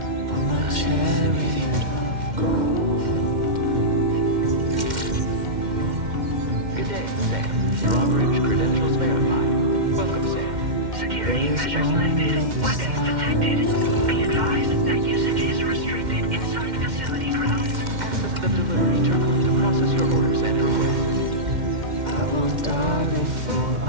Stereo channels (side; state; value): left; late; 2.1 ms